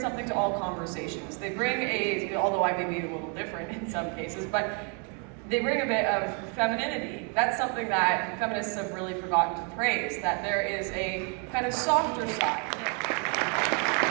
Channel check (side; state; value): left; quieter; 37.5 dB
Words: to all conversations. They bring although I may be a little different in some cases, but they bring a bit of femininity. That's something that feminists have really forgotten to praise, that there is a kind of softer side.